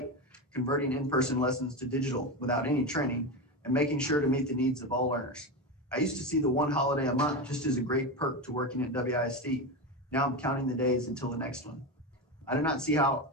converting in-person lessons to digital without any training and making sure to meet the needs of all learners. I used to see the one holiday a month just as a great perk to working at WISD. Now I'm counting the days until the next one. I do not see how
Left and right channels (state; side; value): normal; both; correlation 0.17